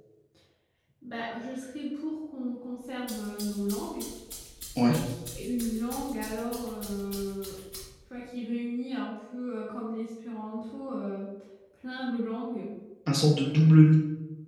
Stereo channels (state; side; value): identical; both; correlation 1.00